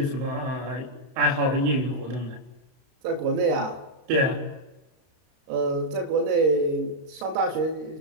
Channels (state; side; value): late; left; 32 ms